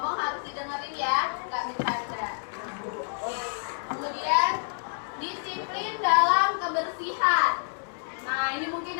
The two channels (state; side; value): silent; right; 59 dB below the other